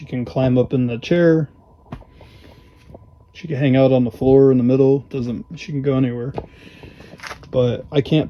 can climb up in the chair. She can hang out on the floor in the middle. She can go anywhere. But I can't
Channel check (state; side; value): identical; both; correlation 1.00